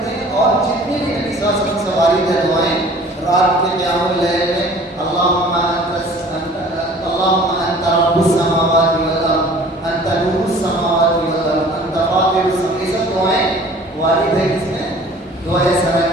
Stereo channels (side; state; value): both; normal; correlation 0.49